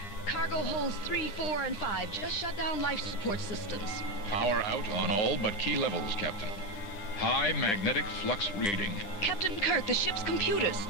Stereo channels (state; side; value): late; right; 10 ms